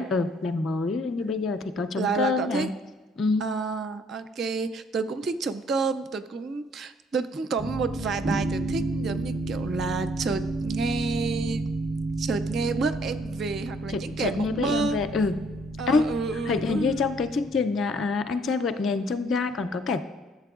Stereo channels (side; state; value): both; normal; correlation 0.63